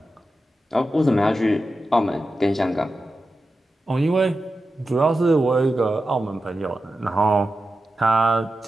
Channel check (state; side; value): normal; both; correlation 0.92